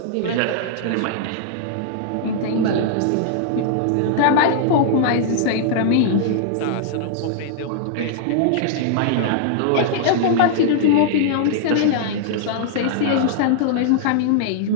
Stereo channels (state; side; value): different; both; correlation -0.01